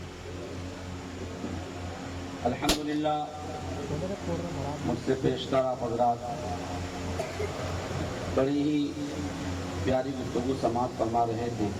الحمدللہ مجھ سے پیشتر آپ حضرات بڑی ہی پیاری گفتگو سماعت فرما رہے تھے۔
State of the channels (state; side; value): identical; both; correlation 1.00